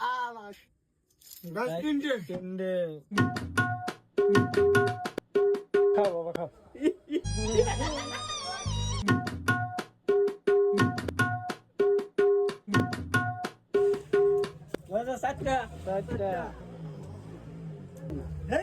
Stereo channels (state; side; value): identical; both; correlation 1.00